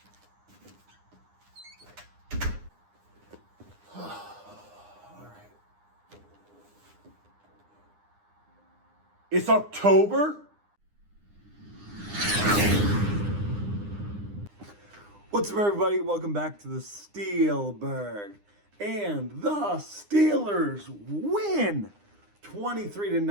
All right. It's October? What's up, everybody? Welcome back to the Steelburgh. And the Steelers win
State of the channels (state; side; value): late; left; 9.8 ms